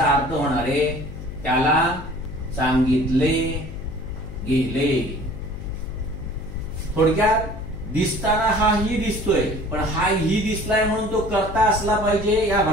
अर्थ होणार आहे त्याला सांगितले गेले. थोडक्यात दिसताना हा ही दिसतोय, पण हा ही दिसलाय म्हणून तो करता असला पाहिजे या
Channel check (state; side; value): noise; left; hum, 11 dB below the sound